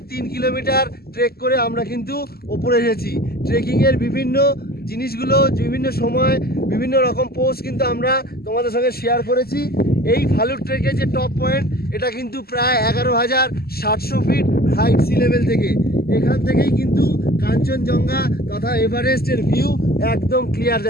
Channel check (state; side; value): late; right; 0.45 ms